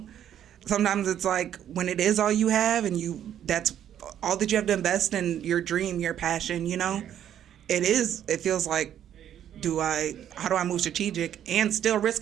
sometimes it's like when it is all you have and that's all that you have to invest in, your dream, your passion, you know? It feels like, how do I move strategic and still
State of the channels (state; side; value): quieter; left; 10.3 dB